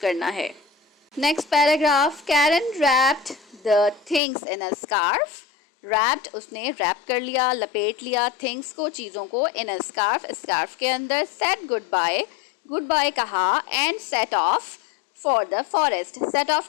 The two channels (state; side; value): drops out; right; at 4.2 s